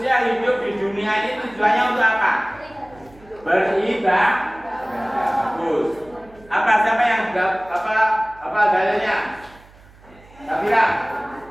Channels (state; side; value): noise; right; hum, 25 dB below the sound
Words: hidup di dunia ini tujuannya untuk apa? Beribadah. Bagus. Apa siapa yang apa dalilnya? Sabira.